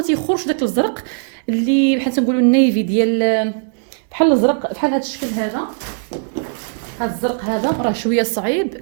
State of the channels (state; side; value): silent; left; digital silence